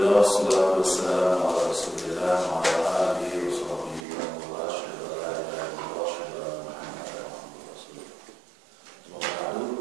wassalatu wassalamu ala Rasulillah wa ala alihi wa sahbihi wa man wala, asyhadu an la ilaha illallah wa asyhadu anna Muhammadan abduhu wa rasuluh. Semoga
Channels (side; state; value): left; drops out; at 4.0 s